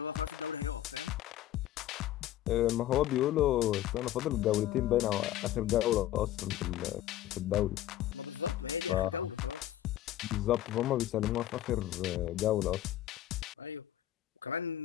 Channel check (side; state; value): right; quieter; 12.9 dB